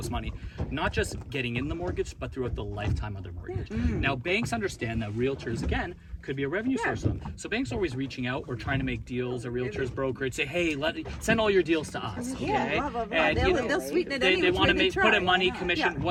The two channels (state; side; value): identical; both; correlation 1.00